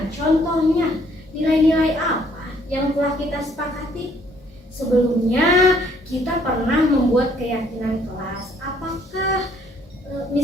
Contohnya, nilai-nilai apa yang telah kita sepakati? Sebelumnya kita pernah membuat keyakinan kelas. Apakah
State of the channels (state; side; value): normal; both; correlation 0.64